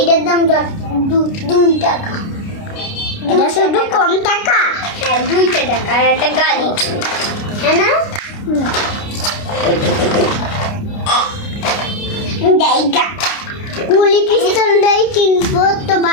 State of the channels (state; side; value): late; right; 29 ms